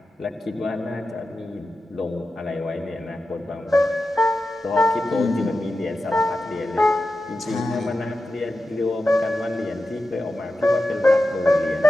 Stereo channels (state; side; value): normal; both; correlation 0.92